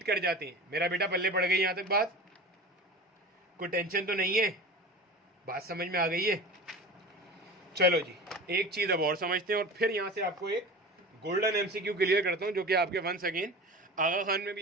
कर जाते हैं। मेरा बेटा पल्ले पड़ गई यहां तक बात? कोई टेंशन तो नहीं है? बात समझ में आ गई है? चलो जी, एक चीज अब और समझते हैं और फिर यहां से आपको एक गोल्डन एमसीक्यू क्लियर करता हूं जो कि आपके वंस अगेन आगा खान में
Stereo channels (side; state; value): both; normal; correlation 0.33